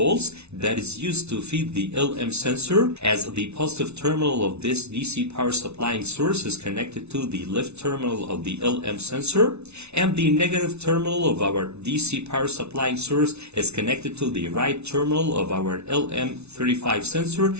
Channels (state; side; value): late; left; 0.81 ms